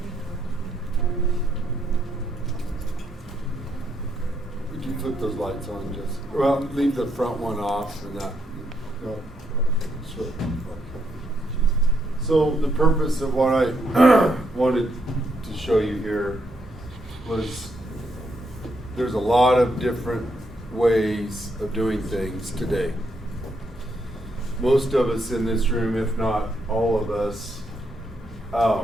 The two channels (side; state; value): both; normal; correlation 0.77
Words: Would you flip those lights on, just well, leave the front one off and that. No. Sure. So the purpose of what I wanted to show you here was there's a lot of different ways of doing things today. Most of us in this room, if not all of us,